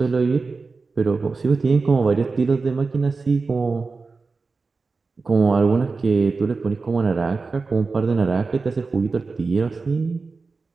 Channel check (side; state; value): left; quieter; 4.2 dB